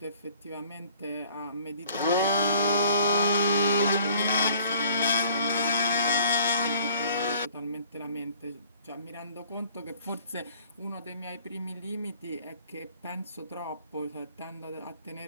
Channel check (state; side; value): inverted; both; correlation -0.55